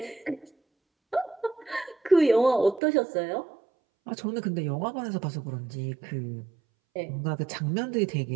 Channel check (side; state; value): left; drops out; at 2.8 s